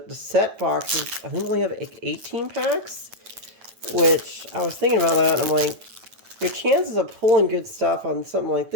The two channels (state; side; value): late; left; 9.3 ms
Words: set boxes, I think they only have 18 packs, which I was thinking about that, and I'm like, your chances of pulling good stuff on something like